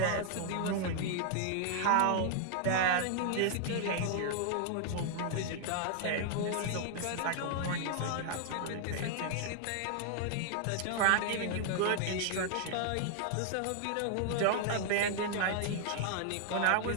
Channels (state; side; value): different; both; correlation 0.00